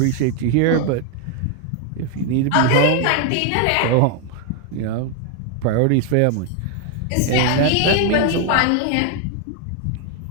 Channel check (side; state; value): both; different; correlation 0.00